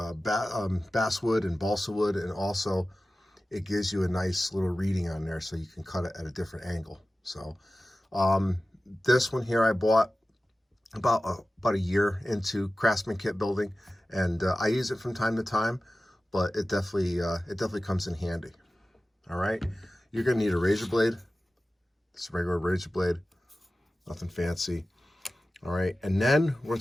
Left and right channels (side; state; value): both; normal; correlation 0.95